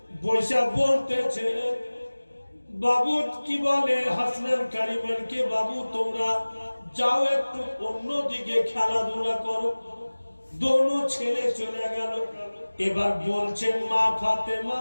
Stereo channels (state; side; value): inverted; both; correlation -1.00